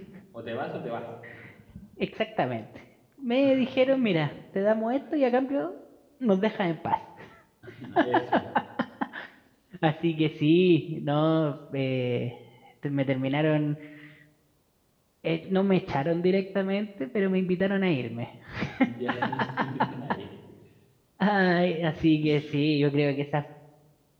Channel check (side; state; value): both; identical; correlation 1.00